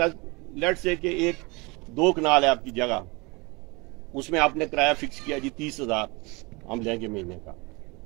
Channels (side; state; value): left; quieter; 26.6 dB